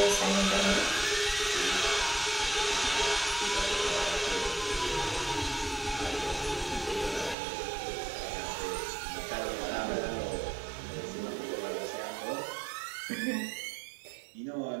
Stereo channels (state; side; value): drops out; left; at 7.4 s